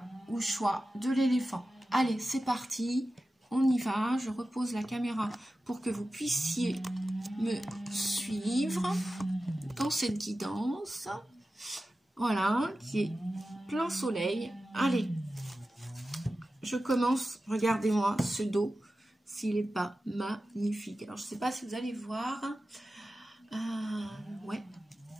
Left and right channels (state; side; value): normal; both; correlation 0.94